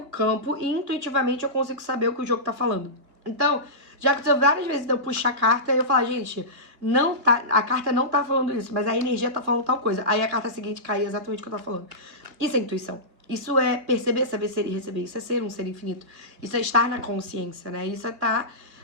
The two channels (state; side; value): late; left; 2.2 ms